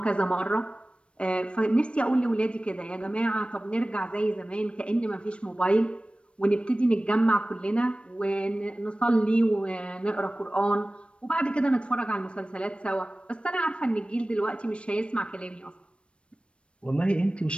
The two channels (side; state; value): right; late; 0.059 ms